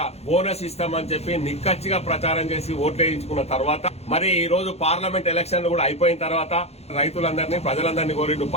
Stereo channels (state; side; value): late; right; 0.31 ms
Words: బోనస్ ఇస్తామని చెప్పి నిక్కచ్చిగా ప్రచారం చేసి ఓట్లు వేయించుకున్న తర్వాత మరి ఈ రోజు పార్లమెంట్ ఎలక్షన్లు కూడా అయిపోయిన తర్వాత రైతులందరినీ ప్రజలందరినీ కోరిండు